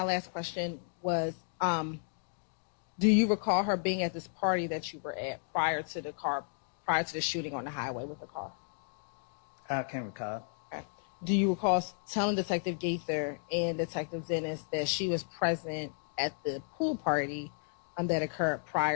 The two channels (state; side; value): silent; right; digital silence